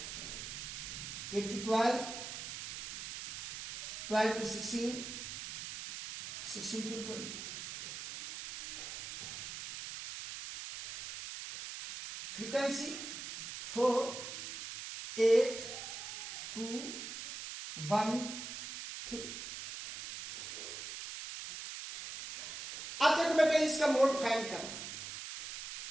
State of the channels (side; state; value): right; noise; hiss, 7 dB below the sound